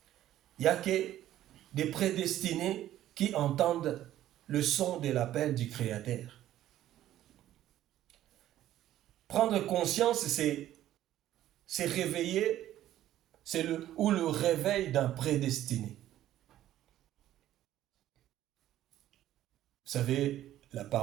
Il n'y a que des prédestinés qui entendent le son de l'appel du Créateur. Prendre conscience, c'est réveiller, c'est le réveil d'un prédestiné. Vous savez, la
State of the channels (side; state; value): left; quieter; 13.0 dB